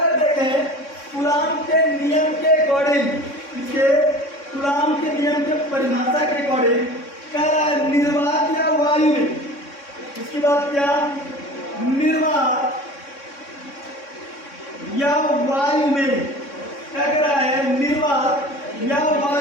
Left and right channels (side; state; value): right; late; 3.6 ms